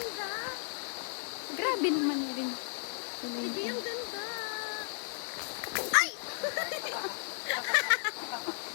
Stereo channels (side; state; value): right; silent; 55 dB below the other